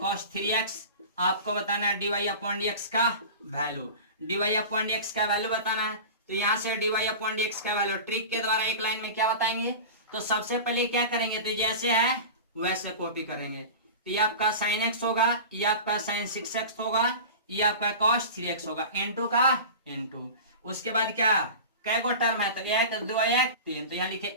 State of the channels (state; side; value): inverted; both; correlation -0.32